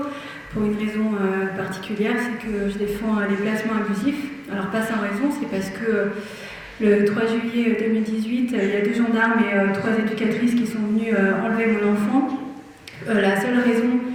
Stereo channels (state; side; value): identical; both; correlation 1.00